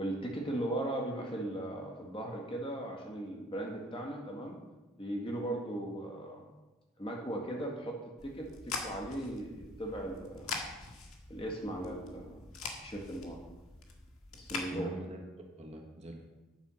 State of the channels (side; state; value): both; normal; correlation 0.54